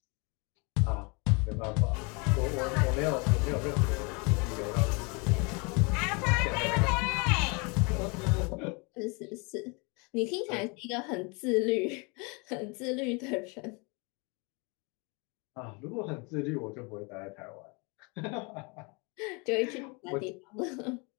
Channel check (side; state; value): right; quieter; 30.7 dB